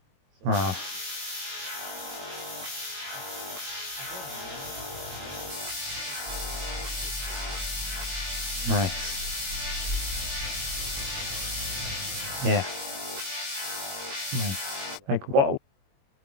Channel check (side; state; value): left; late; 22 ms